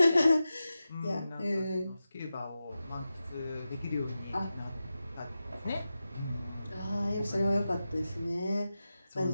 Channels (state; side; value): inverted; both; correlation -0.92